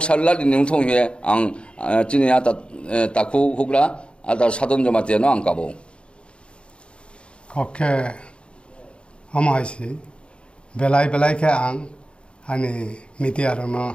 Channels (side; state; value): right; late; 0.055 ms